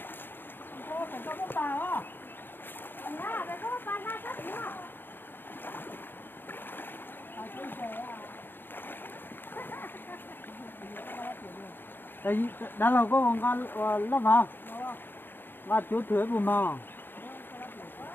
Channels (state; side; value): late; right; 0.098 ms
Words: đây đã là có con lắm hả và chú thuế của mà